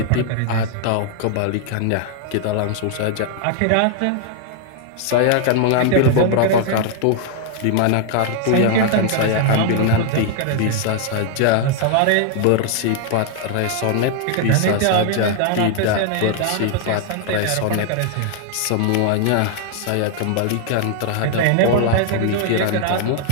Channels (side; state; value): both; different; correlation 0.00